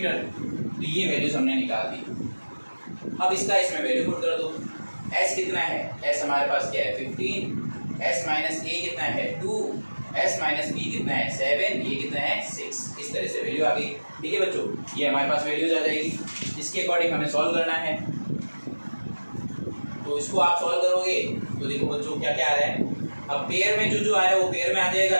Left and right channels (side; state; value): both; inverted; correlation -1.00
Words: तो ये वैल्यूज हमने निकाल दी। अब इसका इसमें वैल्यू पुट कर दो। s कितना है, s हमारे पास क्या है 15, s माइनस a कितना है 2, s माइनस b कितना है 7, ये कितना है 6। इस तरह से वैल्यू आ गई, ठीक है बच्चों। ये हमारे पास वैल्यूज आ जाएगी। इसके अकॉर्डिंग हमें सॉल्व करना है। तो इसको आप सॉल्व करोगे तो देखो बच्चों क्या क्या आ रहा है। अब पेयर में जो आ रहा है वो पेयर में आ जाएगा,